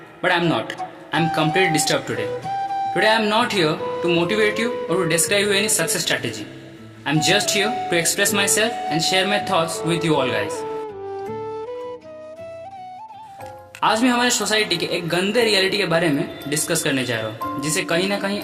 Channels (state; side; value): identical; both; correlation 1.00